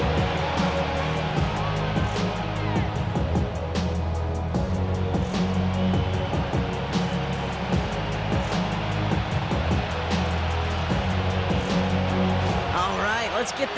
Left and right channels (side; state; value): both; identical; correlation 1.00